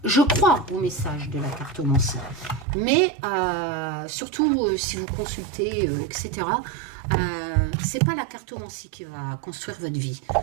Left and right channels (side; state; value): left; drops out; at 2.7 s